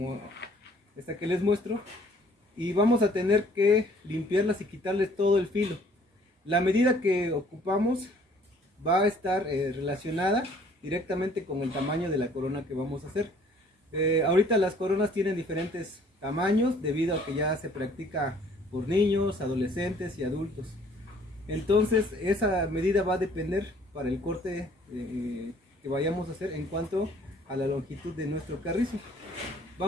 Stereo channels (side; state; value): both; normal; correlation 0.58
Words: esta que les muestro, y vamos a tener que limpiarlas y quitarles todo el filo. La medida que ocupamos va a estar relacionada directamente con el tamaño de la corona que vamos a hacer. Ahorita las coronas tienen diferentes tamaños debido a que ya se practica por niños, adolescentes y adultos. Entonces esa medida va a depender para el corte que vayamos a hacer en cuanto a la longitud de nuestro carrizo.